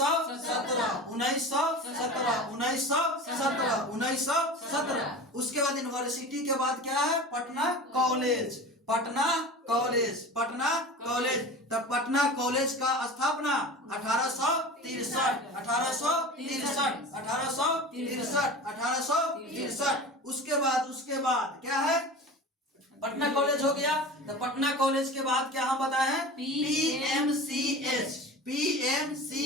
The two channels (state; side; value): normal; both; correlation 0.34